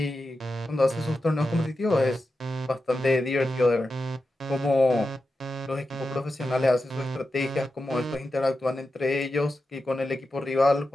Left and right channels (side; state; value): both; normal; correlation 0.90